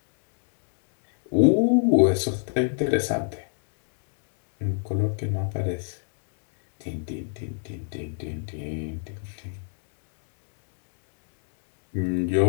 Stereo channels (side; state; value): right; silent; digital silence